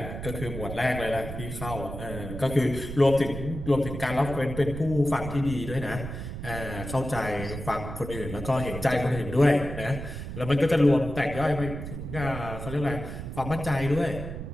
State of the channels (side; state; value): right; noise; rumble, 8 dB below the sound